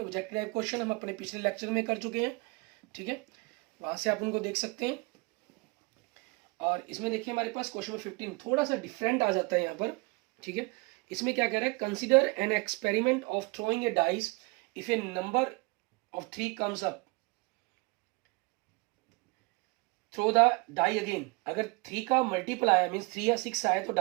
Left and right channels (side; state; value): left; quieter; 26.9 dB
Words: टाइप क्वेश्चन हम अपने पिछले लेक्चर में कर चुके हैं। ठीक है, वहां से आप उनको देख सकते हैं। और इसमें देखिए हमारे पास क्वेश्चन नंबर 15 थोड़ा सा डिफरेंट आ जाता है यहाँ पर। ठीक है, इसमें क्या कह रहा है, consider an experiment of throwing a dice if a number of 3 comes up, throw the die again. अगर 3 का मल्टीपल आया मीन्स 3 या 6 आया तो